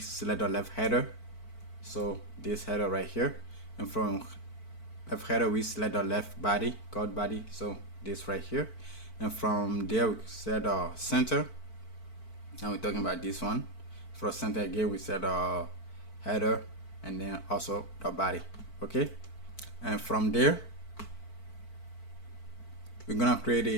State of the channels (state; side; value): late; right; 4.5 ms